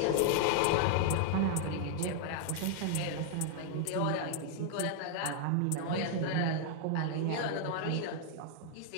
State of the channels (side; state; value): both; different; correlation 0.00